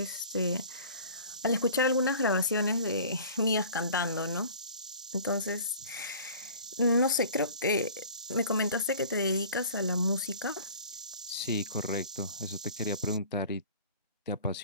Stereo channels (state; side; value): inverted; both; correlation -0.45